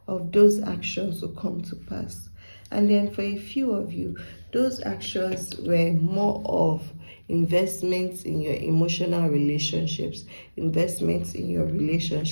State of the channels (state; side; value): inverted; both; correlation -1.00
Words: of those actions to come to pass. And then for a few of you, those actions were more of investments in your emotional relationships, investments in your